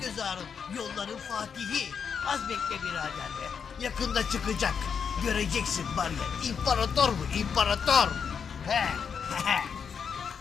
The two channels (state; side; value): quieter; right; 6.7 dB